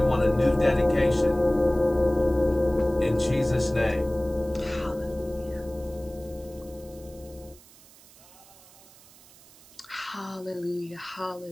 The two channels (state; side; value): noise; right; hiss, 24 dB below the sound